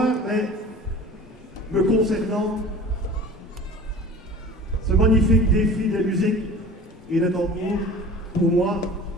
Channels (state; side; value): normal; both; correlation 0.41